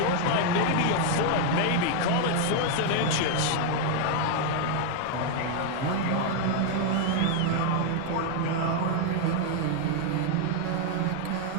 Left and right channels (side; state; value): both; different; correlation 0.00